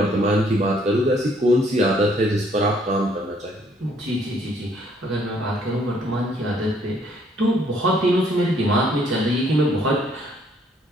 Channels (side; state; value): both; normal; correlation 0.65